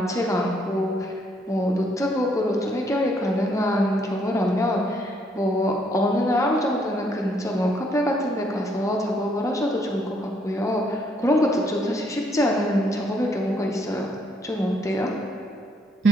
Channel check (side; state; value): both; normal; correlation 0.70